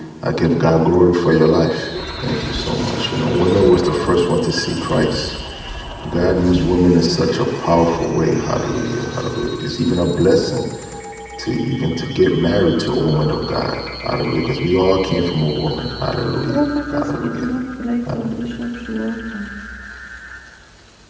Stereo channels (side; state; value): both; identical; correlation 1.00